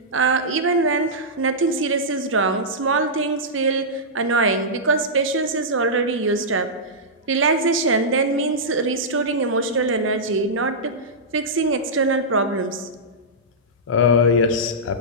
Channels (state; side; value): normal; both; correlation -0.13